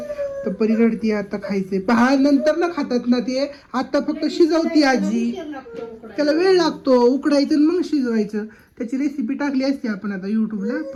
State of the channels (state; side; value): identical; both; correlation 1.00